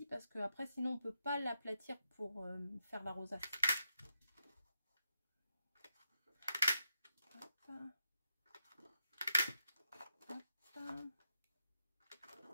Parce que après, sinon, on ne peut pas l'aplatir pour faire la rosace. Hop. Hop.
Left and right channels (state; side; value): inverted; both; correlation -0.84